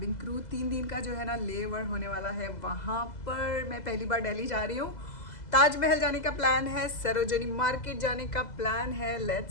क्रू। 3 दिन का जो है ना ले ओवर होने वाला है वहाँ पर। मैं पहली बार दिल्ली जा रही हूँ। ताजमहल जाने का प्लान है, सरोजनी मार्केट जाने का प्लान है।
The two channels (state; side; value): late; right; 2.0 ms